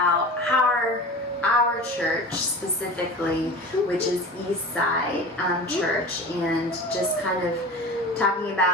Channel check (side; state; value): both; normal; correlation 0.34